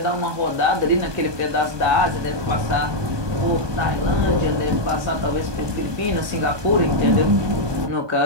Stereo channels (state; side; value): late; left; 1.2 ms